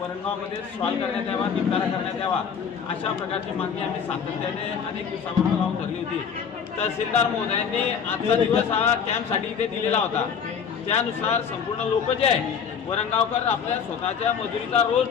सॉल्व्ह करण्यात यावा, निपटारा करण्यात यावा, अशा प्रकारची मागणी आम्ही सातत्याने अनेक दिवसापासून लावून धरली होती. तहसीलदार महोदयांनी आजचा दिवस हा कॅम्पसाठी इथे दिलेला होता. त्यानुसार संपूर्ण लोक जे आहे वरणगावकर आपल्या स्वतःच्या मजुरीचा रोज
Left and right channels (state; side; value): quieter; right; 6.9 dB